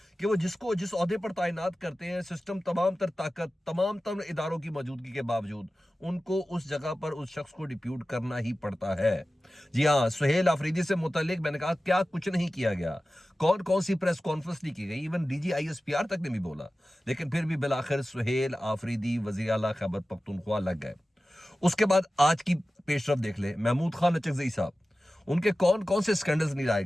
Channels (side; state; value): both; normal; correlation 0.95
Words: कि वो जिसको जिस ओहदे पर तैनात करते हैं, सिस्टम तमाम तर ताकत तमाम तर इदारों की मौजूदगी के बावजूद उनको उस जगह पर उस शख्स को डिप्यूट करना ही पड़ता है। जी हाँ, सुहेल आफरीदी से मुतल्लिक मैंने कहा क्या कुछ नहीं किया गया, कौन कौन सी प्रेस कॉन्फ्रेंस नहीं की गई, इवन DG ISPR तक ने भी बोला, लेकिन फिर भी बिलाखिर सुहेल आफरीदी वज़ीर आला खैबर पख्तूनख्वा लग गए। उसके बाद आज की पेशरफ देख ले, महमूद खान अचकज़ई साहब, उनके कौन कौन से स्कैंडल्स नहीं लाए